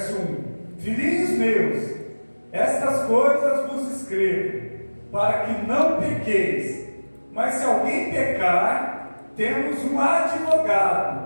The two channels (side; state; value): both; inverted; correlation -1.00